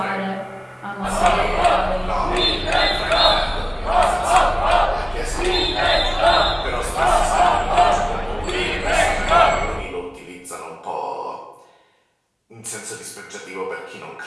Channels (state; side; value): identical; both; correlation 1.00